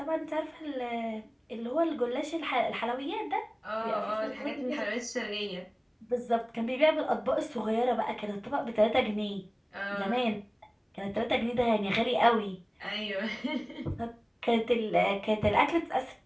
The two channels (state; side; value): identical; both; correlation 1.00